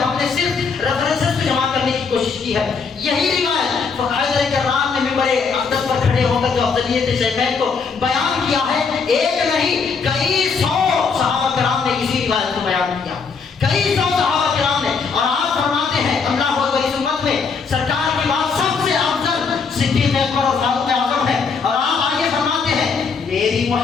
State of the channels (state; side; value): quieter; right; 5.3 dB